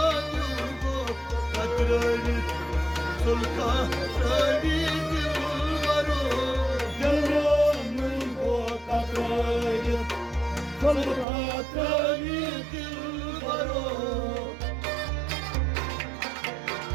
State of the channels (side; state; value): left; drops out; at 11.2 s